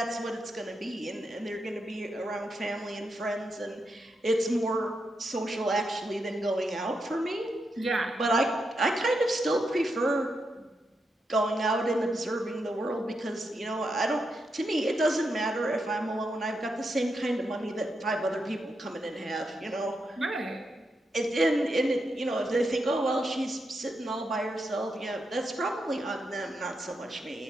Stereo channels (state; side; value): normal; both; correlation 0.84